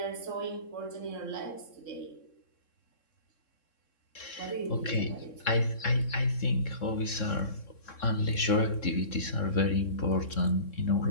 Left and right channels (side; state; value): right; late; 3.6 ms